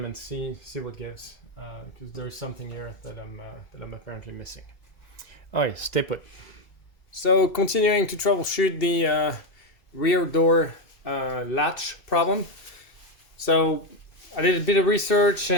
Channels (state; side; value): late; right; 2.7 ms